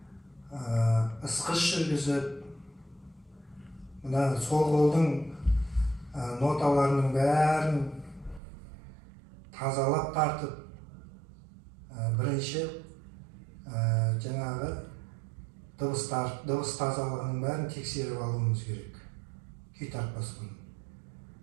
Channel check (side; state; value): left; drops out; at 8.4 s